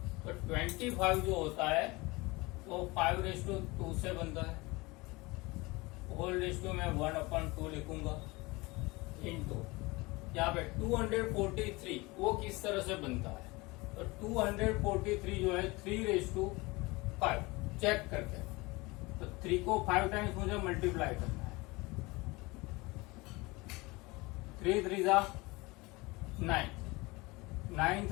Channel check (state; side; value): quieter; right; 23.5 dB